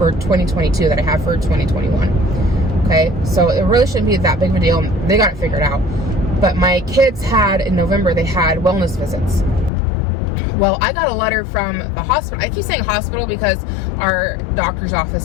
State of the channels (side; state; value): right; drops out; at 9.7 s